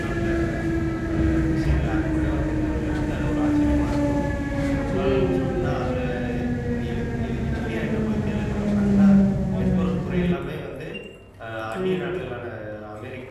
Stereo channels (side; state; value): both; identical; correlation 1.00